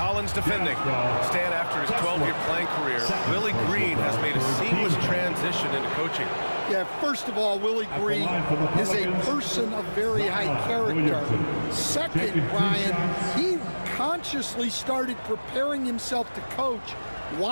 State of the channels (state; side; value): inverted; both; correlation -1.00